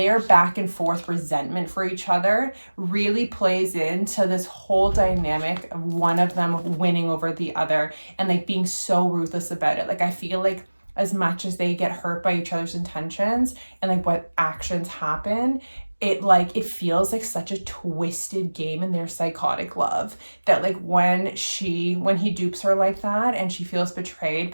back and forth resentment for each other really plays into this whole dynamic of one of them winning over the other and like being so ruthless about it. Like I feel like as much as they get hurt by each other's intentions and like what actions happen, it feels like such a twisted game in their psychotic love, that like when he dupes her like that and she feels betrayed,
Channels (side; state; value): both; inverted; correlation -1.00